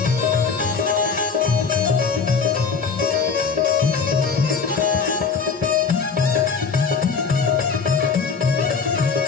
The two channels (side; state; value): right; quieter; 5.4 dB